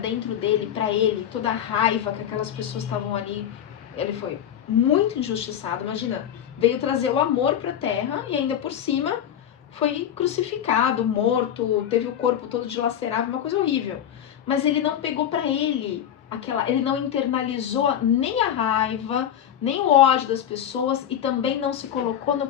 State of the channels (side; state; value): right; quieter; 9.9 dB